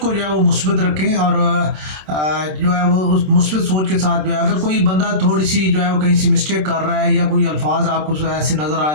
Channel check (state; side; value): late; left; 27 ms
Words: جو ہے وہ مثبت رکھیں، اور جو ہے وہ اس مثبت سوچ کے ساتھ جو ہے اگر کوئی بندہ تھوڑی سی جو ہے وہ کہیں سی مسٹیک کر رہا ہے یا کوئی الفاظ آپ کو ایسے نظر آ